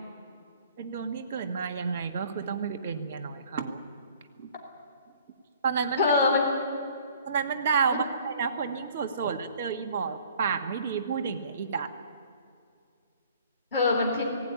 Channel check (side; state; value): both; inverted; correlation -0.53